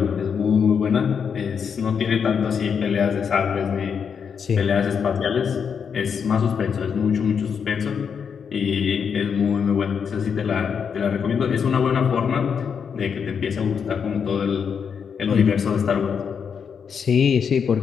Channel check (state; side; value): quieter; right; 6.8 dB